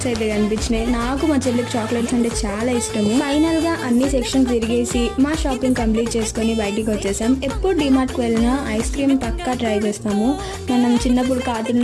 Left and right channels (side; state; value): both; identical; correlation 1.00